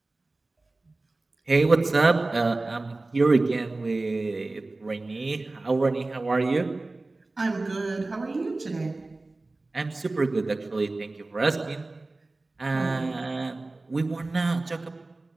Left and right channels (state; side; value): quieter; left; 3.1 dB